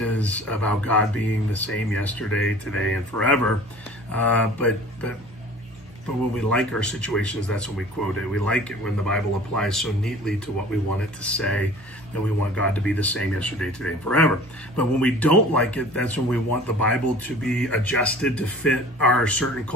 about God being the same yesterday, today, and forever. But when we like our situations, that's when we quote it. We like it when the Bible applies so neatly to what we want it to say, and we want God to be the same yesterday, today, and forever. But when we don't like it, that's when we want the Bible to be adjusted to fit our certain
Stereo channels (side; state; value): both; normal; correlation 0.45